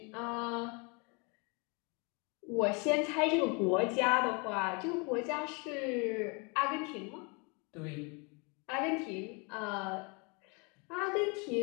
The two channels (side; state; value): right; quieter; 32.0 dB